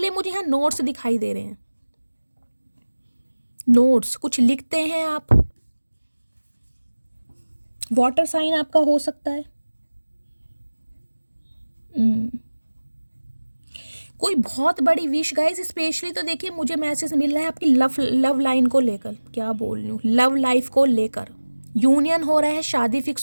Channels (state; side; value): inverted; both; correlation -1.00